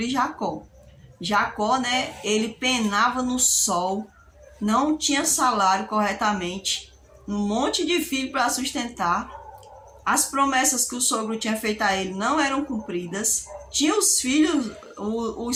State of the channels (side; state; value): both; identical; correlation 1.00